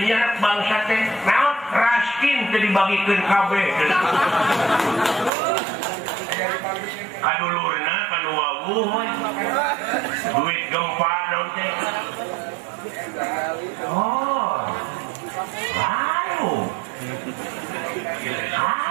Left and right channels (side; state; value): left; drops out; at 5.3 s